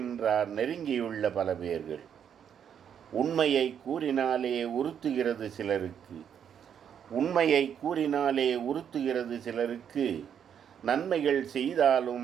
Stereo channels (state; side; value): quieter; left; 8.4 dB